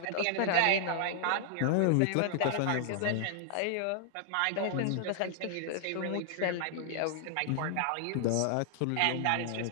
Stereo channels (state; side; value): different; both; correlation 0.00